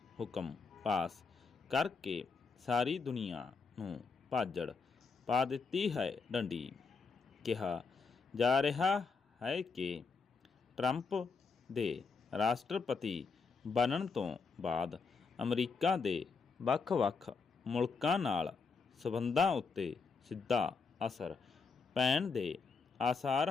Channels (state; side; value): quieter; right; 4.9 dB